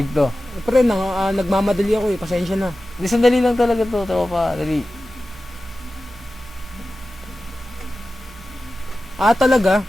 to. Pre, nagmamadali ako eh. Pasensya na. Hindi, sandali lang talaga to, tropa. Dali. Ah, talaga?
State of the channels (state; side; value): normal; both; correlation 0.94